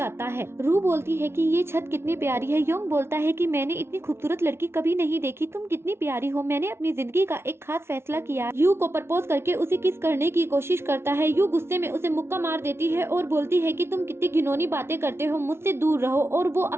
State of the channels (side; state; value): left; late; 0.12 ms